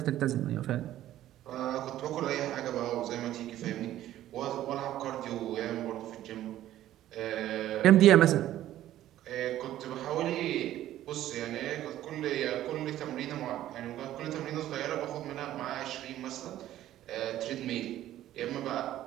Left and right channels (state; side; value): quieter; left; 13.2 dB